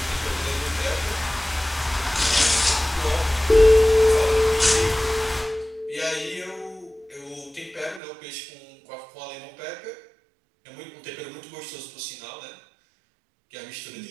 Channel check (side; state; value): left; drops out; at 8.0 s